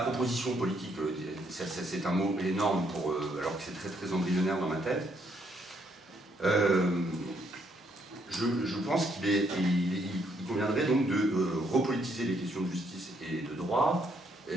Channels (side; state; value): both; normal; correlation 0.72